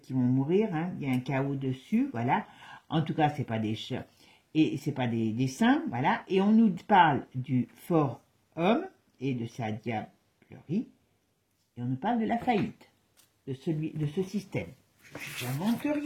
qui vont mourir. Hein. Il y a un chaos dessus, voilà. En tout cas, c'est pas des chats et c'est pas des saints, voilà. Et on nous parle du fort homme et de sa diablerie. Et on nous parle de la faillite de ce système. Je n'invente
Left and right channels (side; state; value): both; identical; correlation 1.00